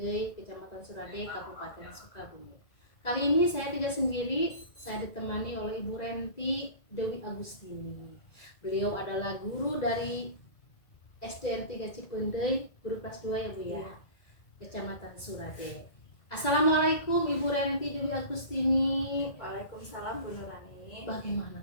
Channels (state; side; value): late; right; 2.0 ms